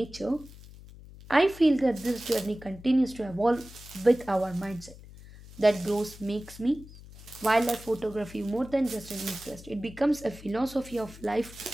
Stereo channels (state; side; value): noise; left; hum, 18 dB below the sound